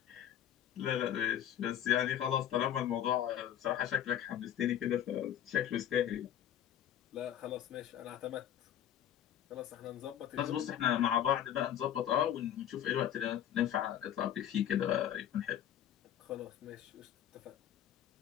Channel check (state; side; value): quieter; right; 10.6 dB